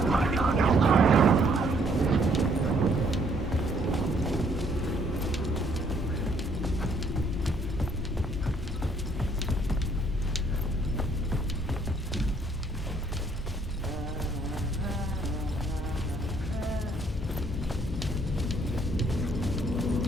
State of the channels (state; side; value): normal; both; correlation 0.66